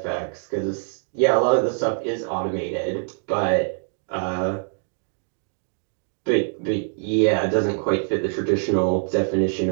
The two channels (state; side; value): silent; left; 63 dB below the other